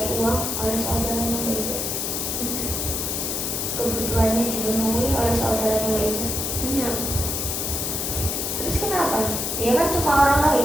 uang oleh saudaranya Mbak Iza? Kebutuhannya dipenuhi oleh saudaranya Mbak Iza? Enggak. Terus kenapa? Dia kan cuma orang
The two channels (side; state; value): left; noise; hiss, 1 dB below the sound